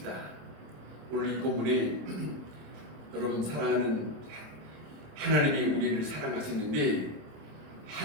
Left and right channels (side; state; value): left; late; 27 ms